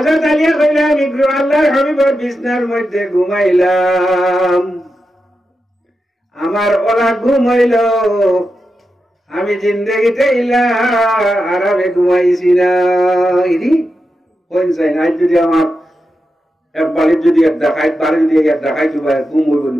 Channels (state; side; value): normal; both; correlation 0.89